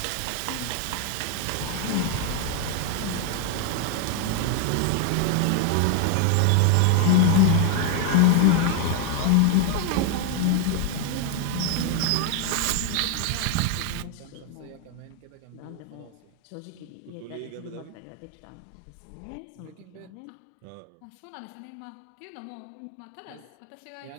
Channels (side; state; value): both; different; correlation 0.01